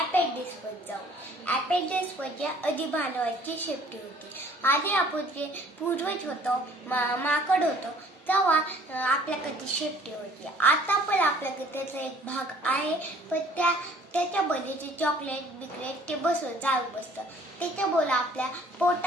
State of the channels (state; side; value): normal; both; correlation 0.55